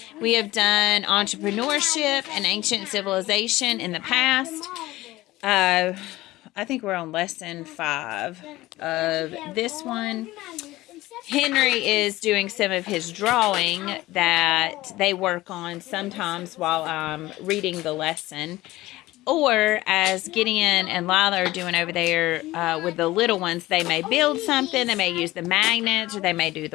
We have done entrepreneurship and ancient civilization in the past. I think we're on lesson 5 of this one. Henry is doing some of his drawing that they work on sometimes while I'm reading the lesson. Or as Gideon and Lila are doing over there with the little ones, they may build something, they may use the magnets, or they may do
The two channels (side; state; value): right; quieter; 17.8 dB